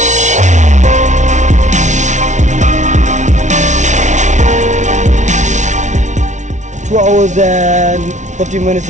2 hours and 40 minutes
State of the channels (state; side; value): late; left; 0.35 ms